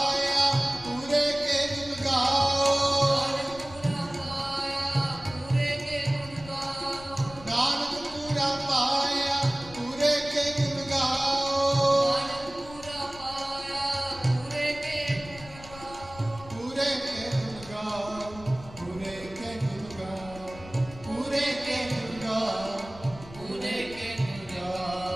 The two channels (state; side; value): noise; left; rumble, 17 dB below the sound